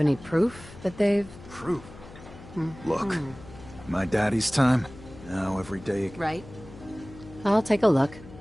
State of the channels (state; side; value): noise; left; hum, 18 dB below the sound